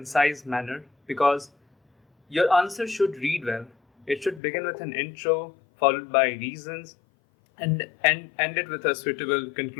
manner because your answer should read well. It should begin with an intro, followed by reasons, and end it with a suitable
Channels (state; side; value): drops out; right; at 4.4 s